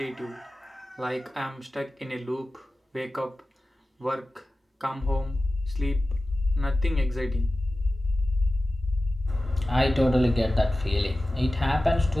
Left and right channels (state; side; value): normal; both; correlation 0.95